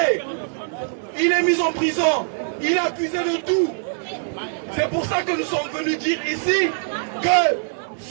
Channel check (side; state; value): left; silent; digital silence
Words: il est mis en prison, il est accusé de tout. C'est pour ça que nous sommes venus dire ici que